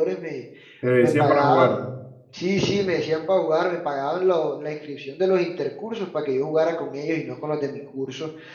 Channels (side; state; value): both; identical; correlation 1.00